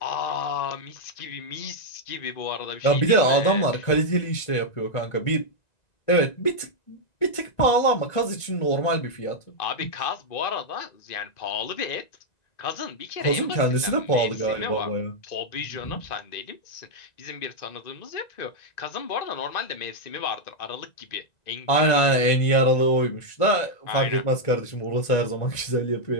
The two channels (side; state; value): right; late; 1.9 ms